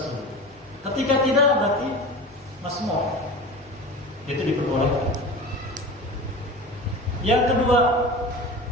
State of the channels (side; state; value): both; normal; correlation 0.33